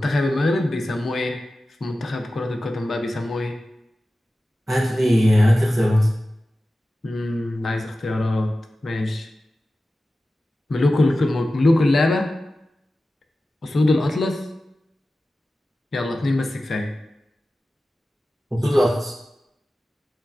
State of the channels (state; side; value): normal; both; correlation 0.95